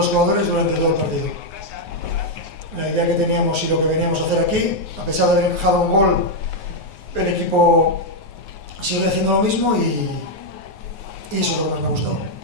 jugadores durante todo el partido. La idea que teníamos y lo que veníamos a hacer aquí, a pesar de haber dejado un gol, el equipo sigue haciendo lo mismo y eso es lo que más me ha gustado.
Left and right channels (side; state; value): right; late; 9.4 ms